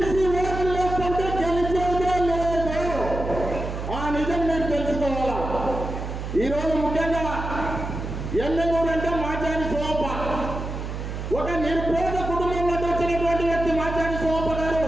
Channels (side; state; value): right; noise; hum, 6 dB below the sound